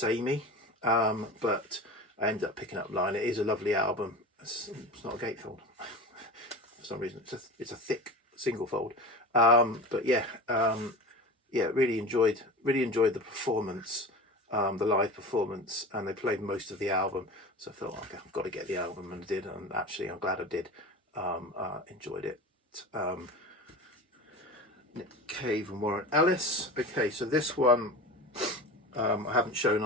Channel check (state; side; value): normal; both; correlation 0.32